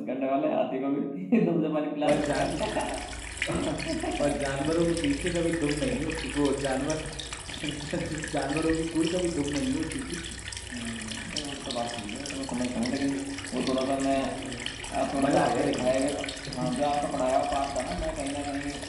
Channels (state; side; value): identical; both; correlation 1.00